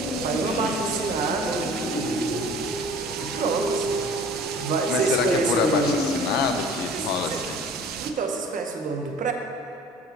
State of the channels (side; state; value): both; normal; correlation 0.46